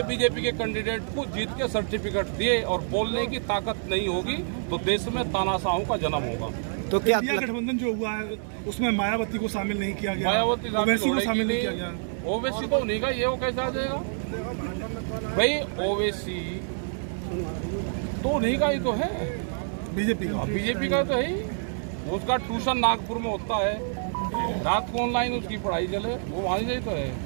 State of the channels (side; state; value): left; silent; digital silence